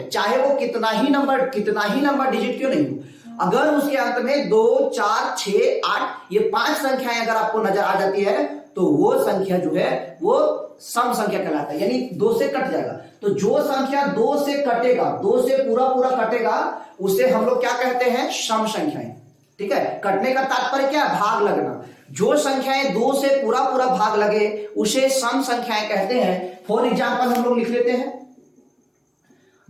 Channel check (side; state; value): both; identical; correlation 1.00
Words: चाहे वो कितना ही नंबर डिजिट क्यों नहीं हो। अगर उसके अंत में 2 4 6 8 ये 5 संख्याएं अगर आपको नजर आ जाती है तो वो संख्या जो है वो सम संख्या कहलाता है, यानी 2 से कट जाएगा। तो जो संख्या 2 से कटेगा, 2 से पूरा पूरा कटेगा, उसे हम लोग क्या कहते हैं? सम संख्याएं, ठीक है। कटने का तात्पर्य क्या है? भाग लगना। जो संख्याएं 2 से पूरा पूरा भाग लगे उसे सम संख्याएं कहते हैं। फॉर एग्जाम्पल हम लोग लिख लेते हैं,